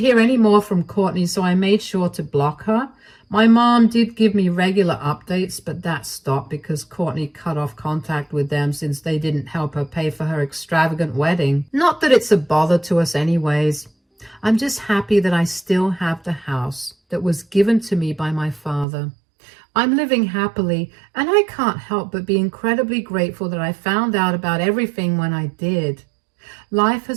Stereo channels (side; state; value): left; drops out; at 18.9 s